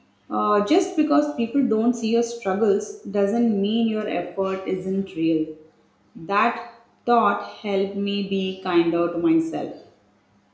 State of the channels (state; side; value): identical; both; correlation 1.00